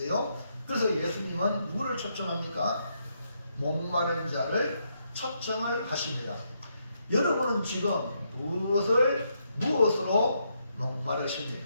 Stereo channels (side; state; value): both; inverted; correlation -0.78